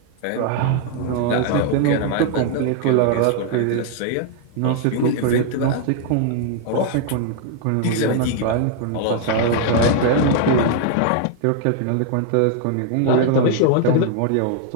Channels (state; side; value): different; both; correlation 0.00